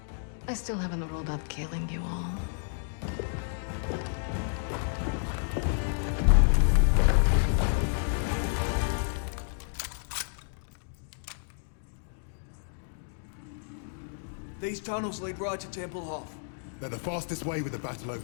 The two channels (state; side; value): silent; right; digital silence